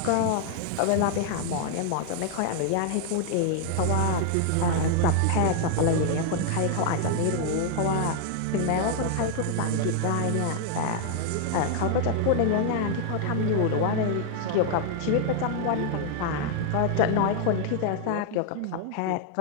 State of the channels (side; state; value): both; different; correlation 0.00